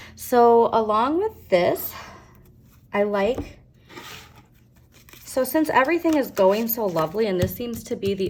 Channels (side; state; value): both; identical; correlation 1.00